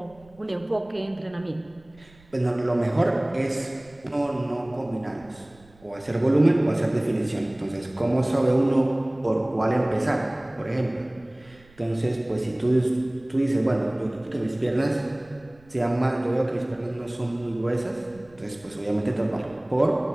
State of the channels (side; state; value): right; noise; rumble, 27 dB below the sound